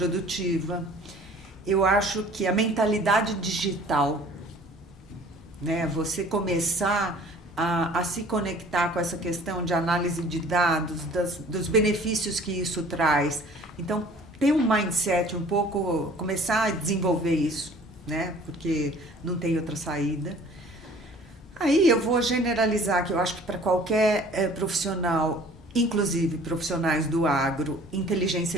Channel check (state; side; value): normal; both; correlation 0.50